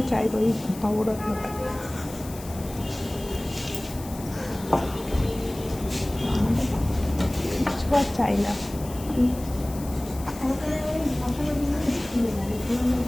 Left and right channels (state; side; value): noise; left; hiss, 16 dB below the sound